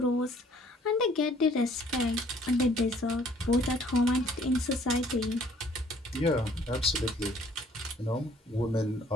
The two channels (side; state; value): both; normal; correlation 0.59